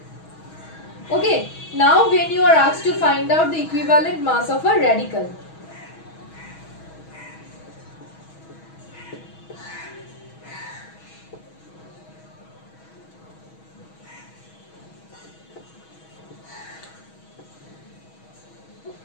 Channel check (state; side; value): late; right; 6.2 ms